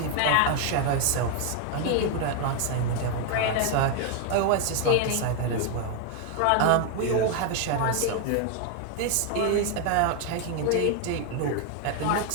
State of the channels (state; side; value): different; both; correlation 0.01